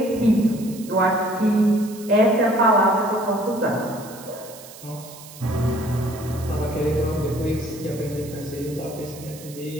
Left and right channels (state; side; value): noise; right; hiss, 18 dB below the sound